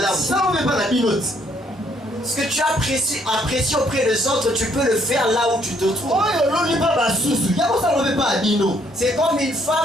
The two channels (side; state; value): both; normal; correlation 0.68